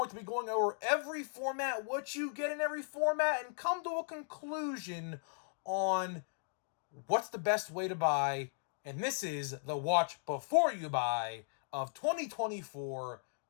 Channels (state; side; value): silent; right; digital silence